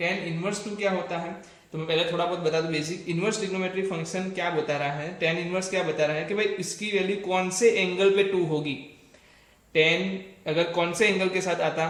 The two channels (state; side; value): identical; both; correlation 1.00